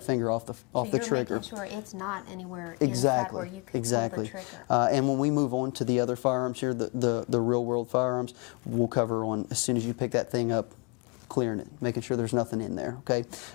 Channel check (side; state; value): right; quieter; 30.2 dB